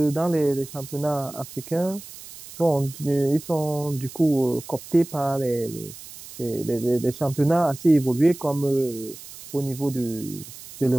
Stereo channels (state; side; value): noise; right; hiss, 16 dB below the sound